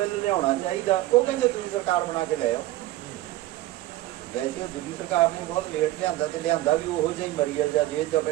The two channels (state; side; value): quieter; left; 16.1 dB